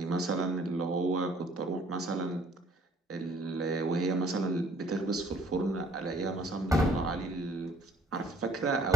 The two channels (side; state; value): both; normal; correlation 0.63